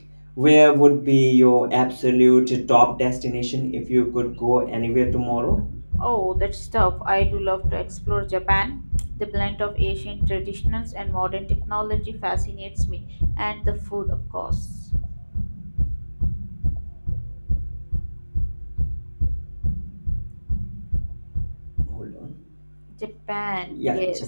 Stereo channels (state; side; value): inverted; both; correlation -1.00